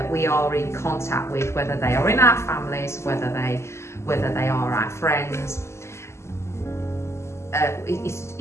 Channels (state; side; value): late; right; 0.13 ms